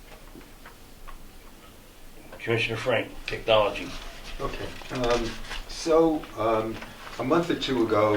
Commissioner Frank, technology. Okay, a month or two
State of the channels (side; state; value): both; identical; correlation 1.00